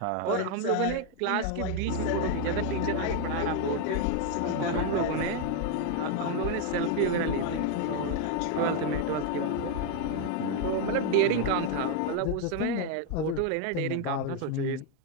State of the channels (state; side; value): different; both; correlation 0.01